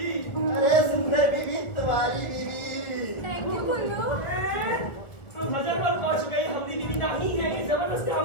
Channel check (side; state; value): right; late; 1.6 ms